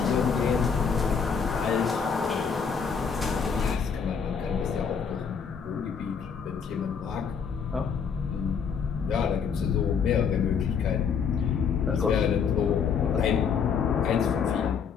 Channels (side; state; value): right; quieter; 6.5 dB